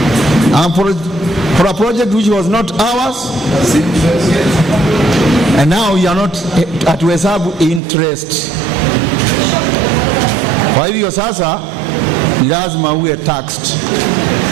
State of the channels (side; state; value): left; drops out; at 7.8 s